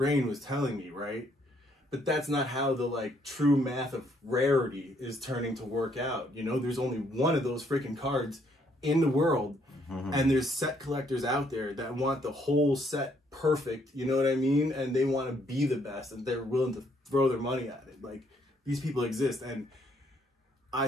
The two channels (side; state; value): both; normal; correlation 0.69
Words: was telling me, right? But that's not how the like true math of rarity is turning to work out. You know, there's only one of those freaking cards in the world. And there's set collectors out there that want the whole set perfect, you know what I mean? And they want to be the best and they're willing to throw their money at it. Like, these people exist, and I